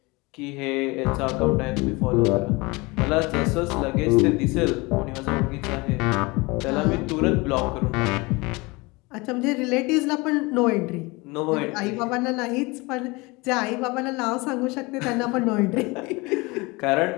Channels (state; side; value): quieter; right; 24.7 dB